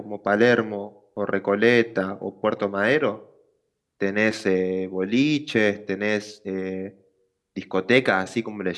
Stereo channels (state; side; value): identical; both; correlation 1.00